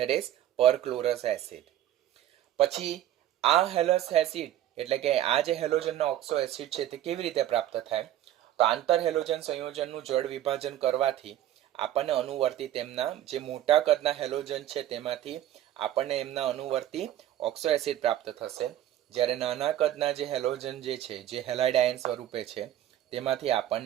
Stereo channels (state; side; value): quieter; left; 12.2 dB